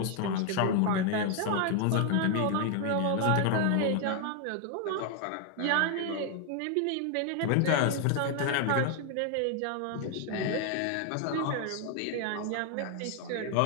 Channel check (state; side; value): different; both; correlation 0.00